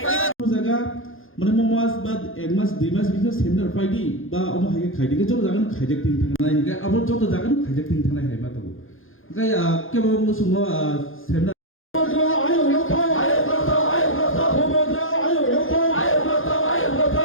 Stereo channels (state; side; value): late; right; 0.59 ms